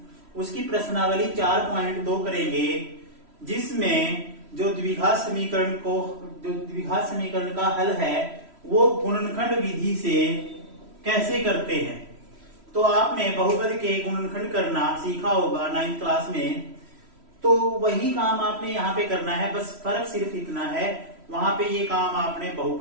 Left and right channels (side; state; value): left; late; 3.1 ms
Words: उसकी प्रश्नावली 4.2 करेंगे, जिसमें जो द्विघात समीकरण का हल है वो गुणनखंड विधि से कैसे करते हैं। तो आपने बहुपद के गुणनखंड करना सीखा होगा 9th क्लास में, तो वही काम आपने यहाँ पे करना है। बस फर्क सिर्फ इतना है, वहां पे ये काम आपने